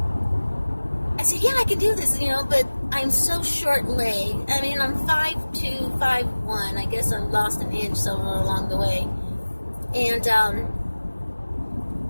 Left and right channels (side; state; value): both; inverted; correlation -1.00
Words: I said, yeah, I can do this, you know, but I'm so short-legged. I mean, I'm 5'2", 5'1". I guess I lost an inch somewhere along the way. And